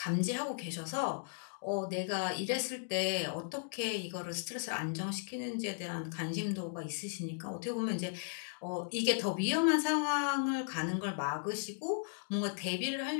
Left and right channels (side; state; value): right; silent; digital silence